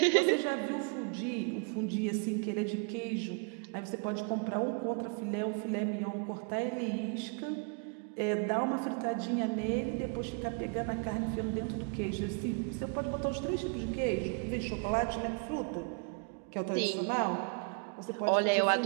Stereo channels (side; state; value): left; quieter; 37.0 dB